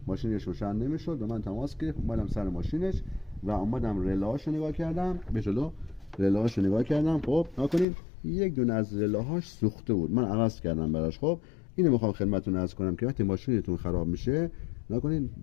ماشینش روشن نمیشد. به من تماس گرفت، اومدم سر ماشینش و اومدم رلاهاشو نگاه کردم، به جلو رلاهاشو نگاه کردم. خب نکنین یک دونه از رلاهاش سوخته بود، من عوض کردم براش. خب اینو میخوام خدمتتون عرض کنم که وقتی ماشینتون خراب میشه، نکنین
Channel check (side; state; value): right; drops out; at 7.9 s